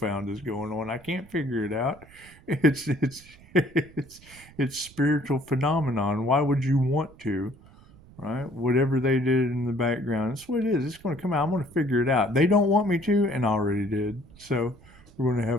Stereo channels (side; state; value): right; noise; rumble, 24 dB below the sound